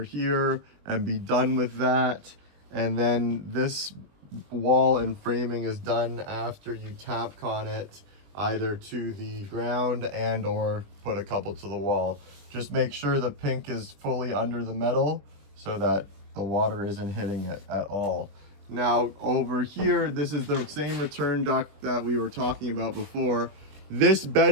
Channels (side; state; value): left; late; 21 ms